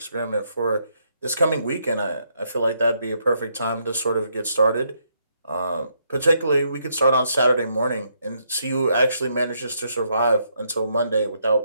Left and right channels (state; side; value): inverted; both; correlation -0.75